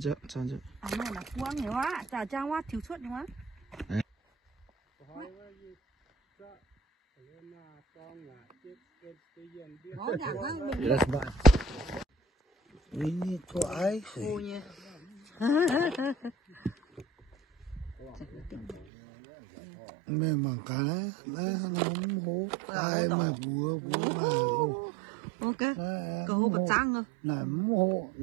chứ. À này là quăng nhiều quá, chả trang quá thiếu suất nhiều quá. That's bad. Ini kok ai? Ôi nha. Memang kalah, nóng hố. Ai mà bùa. Ok, cầu hô bật trăng rồi. Nóng hố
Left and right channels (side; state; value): left; drops out; at 18.9 s